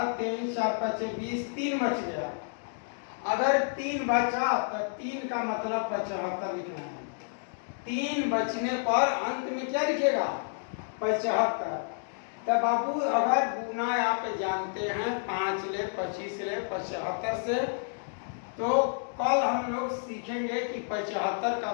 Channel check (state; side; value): silent; right; digital silence